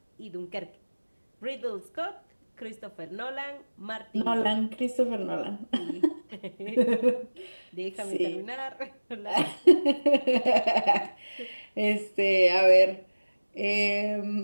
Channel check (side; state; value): both; inverted; correlation -1.00